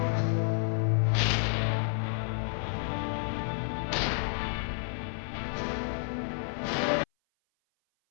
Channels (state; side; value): silent; right; 56 dB below the other